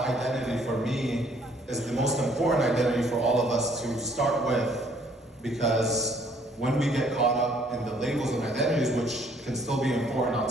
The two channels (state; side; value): normal; both; correlation 0.62